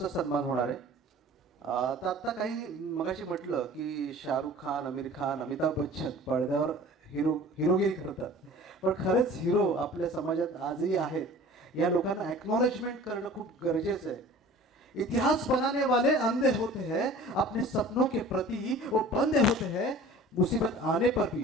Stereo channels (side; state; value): both; normal; correlation 0.44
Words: सन्मान होणार आहे. तर आता काही मगाशी म्हटलं की शाहरुख खान, आमिर खान, अमिताभ बच्चन पडद्यावर हिरोगिरी करतात, पण खरेच हिरो आपल्या समाजात आजही आहेत. या लोकांना एक्नॉलेजमेंट करणं खूप गरजेचं आहे. इतिहास बनाने वाले अंधे होते हैं, अपने सपनों के प्रति वो बंधे होते हैं, मुसीबत आने पर